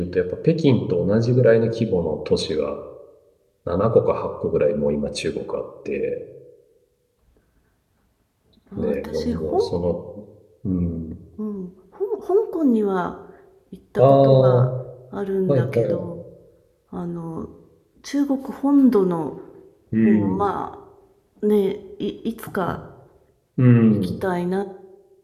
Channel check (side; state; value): both; identical; correlation 1.00